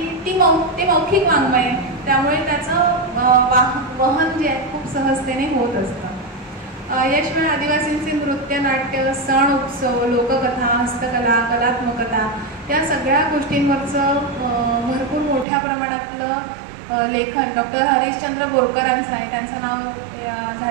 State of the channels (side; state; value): left; drops out; at 15.5 s